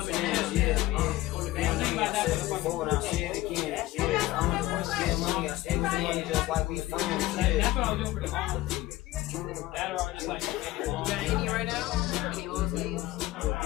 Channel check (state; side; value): quieter; right; 16.8 dB